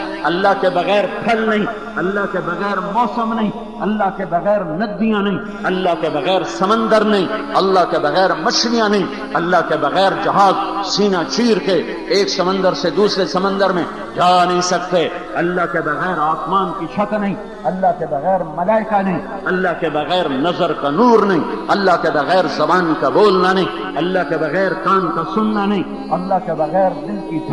اللہ کے بغیر پھل نہیں، اللہ کے بغیر موسم نہیں، اللہ کے بغیر ندیاں نہیں، اللہ کے بغیر سمندر نہیں، اللہ کے بغیر مچھلیاں نہیں، اللہ کے بغیر جہاز سینہ چیر کے ایک سمندر سے دوسرے سمندر میں جا نہیں سکتے، اللہ کے بغیر آسمان کی چھت نہیں، اللہ کے بغیر ملائکہ نہیں، اللہ کے بغیر نظر کا نور نہیں، اللہ کے بغیر زبان کا بولنا نہیں، اللہ کے بغیر کان کا سننا نہیں، اللہ کے بغیر دل کی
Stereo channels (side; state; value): both; identical; correlation 1.00